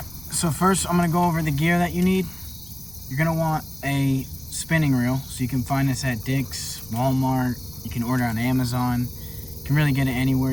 so first I'm going to go over the gear that you need. You're going to want a spinning reel, so you can find this at Dick's, Walmart. You can order on Amazon. You can really get it anywhere.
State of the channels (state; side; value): noise; left; rumble, 23 dB below the sound